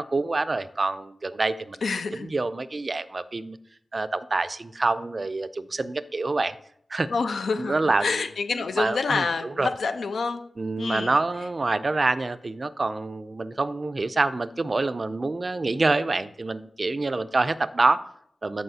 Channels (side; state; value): both; normal; correlation 0.95